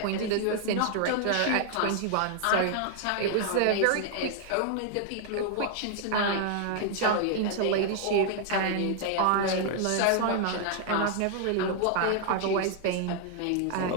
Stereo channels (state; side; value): different; both; correlation 0.00